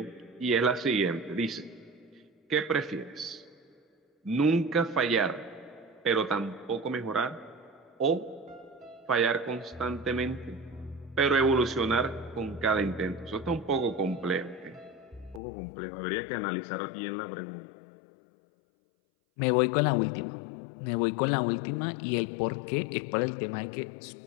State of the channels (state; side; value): drops out; right; at 15.4 s